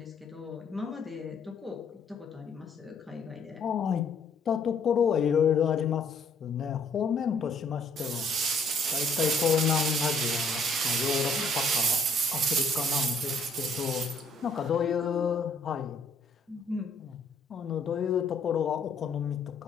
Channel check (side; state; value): right; quieter; 3.1 dB